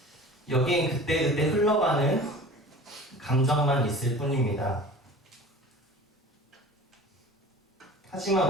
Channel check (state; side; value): normal; both; correlation 0.41